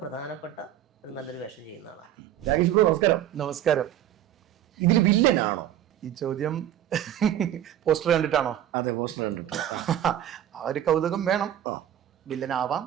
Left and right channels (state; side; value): quieter; left; 11.3 dB